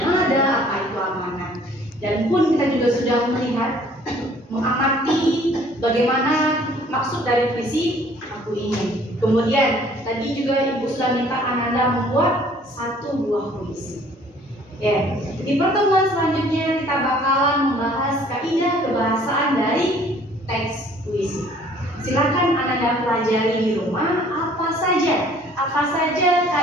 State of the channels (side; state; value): both; normal; correlation 0.56